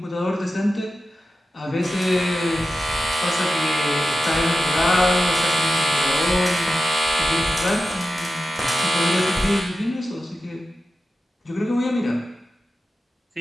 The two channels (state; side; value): normal; both; correlation 0.92